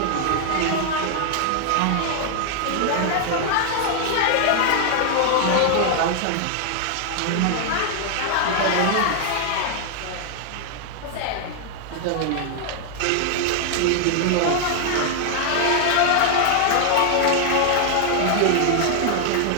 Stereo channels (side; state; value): both; different; correlation 0.00